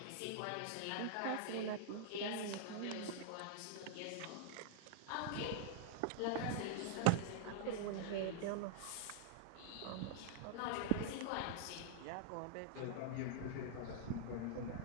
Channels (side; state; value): both; different; correlation -0.01